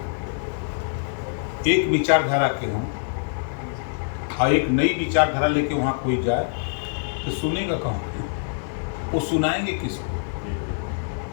एक विचारधारा के हों और एक नई विचारधारा लेके वहाँ कोई जाए तो सुनेगा कौन? वो सुनाएंगे किसको?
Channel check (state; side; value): silent; right; digital silence